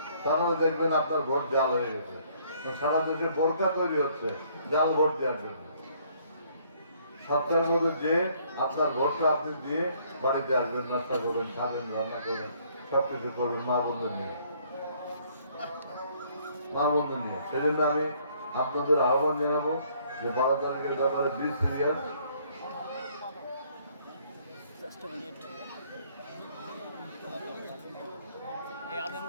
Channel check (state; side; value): inverted; both; correlation -0.64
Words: তাহলে দেখবেন আপনার ভোট জাল হয়ে গেছে। সারা দেশে বোরকা তৈরি হচ্ছে জাল ভোট দেওয়ার জন্য। 7টার মধ্যে যে আপনার ভোটটা আপনি দিয়ে বাড়িতে আসবেন, নাস্তা করবেন, খাবেন, রান্না করবেন, সবকিছু করবেন মা বন্ধুর নিয়ে, মা বন্ধু নিয়ে। সেই জন্য আমি আপনাদের আহ্বান জানাবো যে 12 তারিখের ব্যাপারে বি সিরিয়াস।